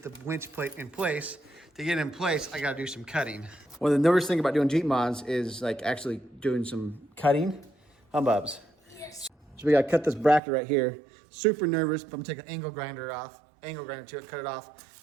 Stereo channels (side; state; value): left; drops out; at 10.4 s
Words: the winch plate in place. To get it in place, I gotta do some cutting. Well, the nervous thing about doing Jeep mods is like actually doing some cutting. Humbubs. Yes. So we gotta cut this bracket right here. Super nervous, but I'm gonna take an angle grinder to it, cut it off.